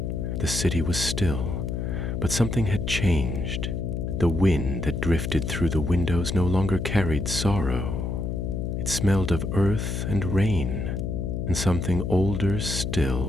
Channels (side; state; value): left; noise; hum, 2 dB below the sound